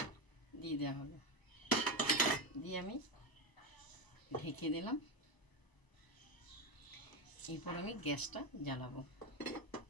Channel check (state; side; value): late; right; 1.0 ms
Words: দিয়ে দেওয়া হলো। দিয়ে আমি ঢেকে দিলাম। এরপর আমি গ্যাসটা জ্বালাবো।